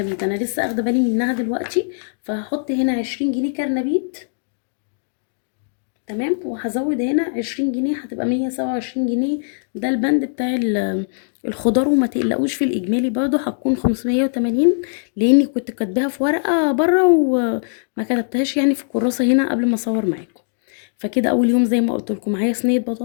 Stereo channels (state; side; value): silent; right; digital silence